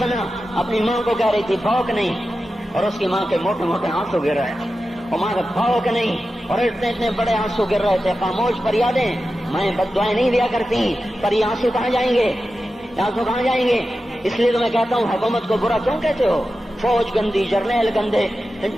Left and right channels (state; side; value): normal; both; correlation 0.92